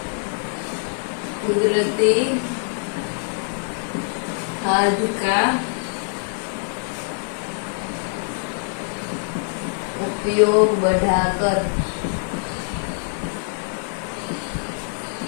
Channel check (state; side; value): silent; right; 63 dB below the other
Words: कुदरती खाद का उपयोग बढ़ाकर